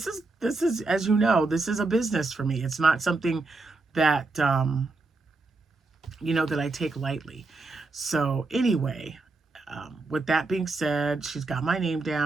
is, as you know, this is a business for me. It's not something that that I take lightly. So anyway, with that being said, she's got my name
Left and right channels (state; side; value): quieter; left; 3.5 dB